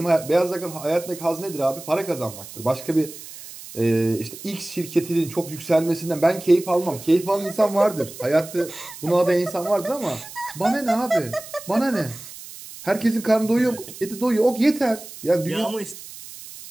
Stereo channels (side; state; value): right; noise; hiss, 15 dB below the sound